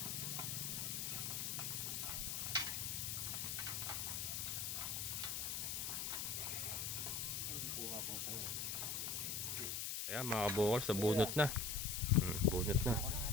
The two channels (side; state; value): left; noise; hiss, 1 dB below the sound